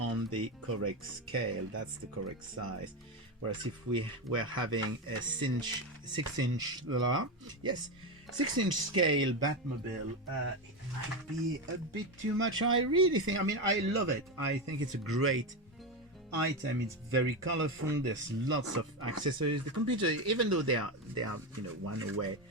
the correct scale. That's the correct size. Whereas if we were having a 6-inch, yes, 6-inch scale Batmobile, it might be a bit too much. I really think, I mean, I love it. I think it's a great item. It's very colorful. There's lots of accessories. The computer, even though they are you know, one away,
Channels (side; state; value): both; normal; correlation 0.14